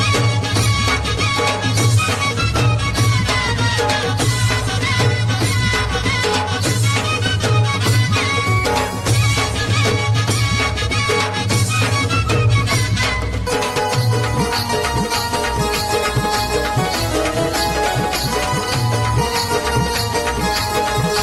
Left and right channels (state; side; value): identical; both; correlation 1.00